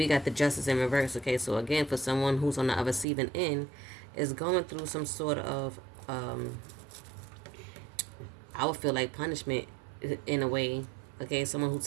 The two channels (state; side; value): drops out; left; at 3.1 s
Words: got the justice in reverse, okay? So again, for someone who's on the receiving end, is going through some sort of, I would feel like punishment in a way, okay? Someone who